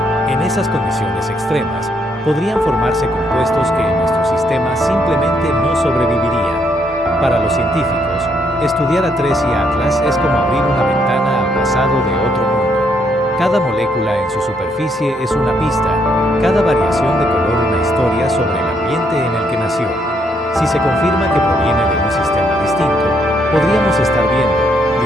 en esas condiciones extremas, podrían formarse compuestos que en nuestro sistema simplemente no sobrevivirían. Para los científicos, estudiar a Tracy Atlas es como abrir una ventana al pasado de otro mundo. Cada molécula en su superficie es una pista, cada variación de color una historia sobre el ambiente en el que nació. Si se confirma que proviene de un sistema distinto, podríamos estar viendo,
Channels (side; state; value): both; normal; correlation 0.73